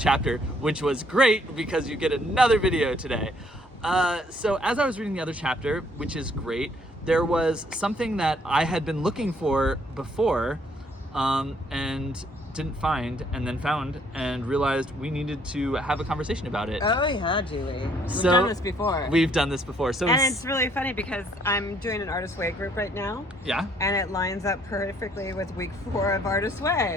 chapter, which was great because you get another video today. So as I was reading the other chapter, which is great, there was something that I had been looking for before, and didn't find, and then found and realized we needed to have a conversation about it. Oh yeah, Julie. We've done this before. We've done this before. So and it's really funny because I'm doing an Artist Way group right now. Yeah. And it lines up perfectly with week 4 of Artist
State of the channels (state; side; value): normal; both; correlation 0.65